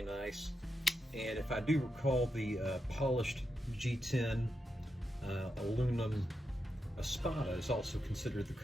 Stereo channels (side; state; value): both; normal; correlation 0.86